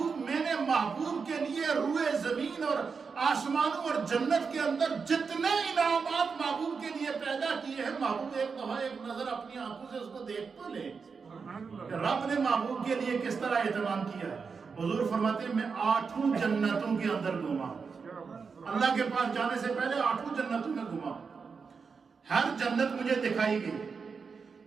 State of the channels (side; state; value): left; quieter; 5.3 dB